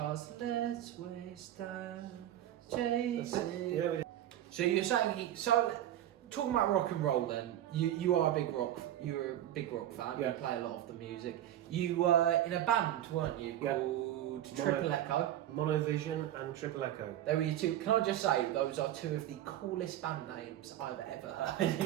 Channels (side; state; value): left; quieter; 12.4 dB